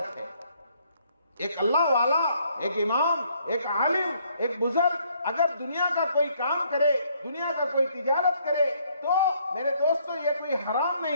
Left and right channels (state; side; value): inverted; both; correlation -0.68